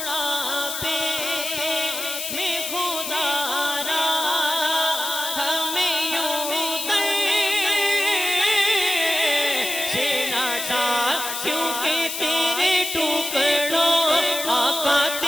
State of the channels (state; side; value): noise; left; hiss, 5 dB below the sound